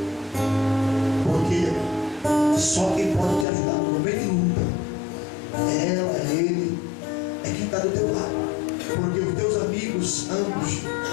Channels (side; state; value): right; drops out; at 3.5 s